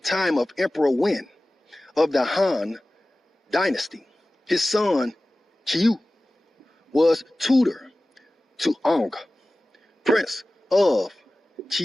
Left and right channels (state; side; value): normal; both; correlation 0.97